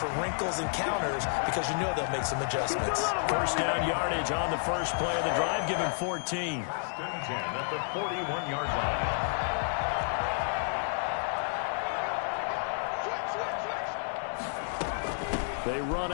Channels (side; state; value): right; silent; digital silence